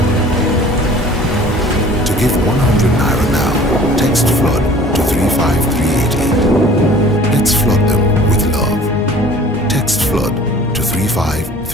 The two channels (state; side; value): normal; both; correlation 0.48